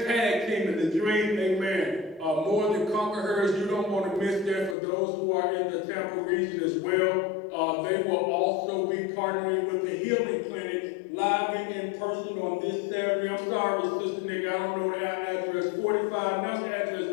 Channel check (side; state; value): right; drops out; at 4.8 s